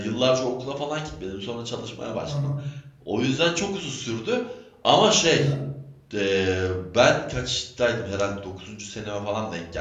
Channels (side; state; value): both; identical; correlation 1.00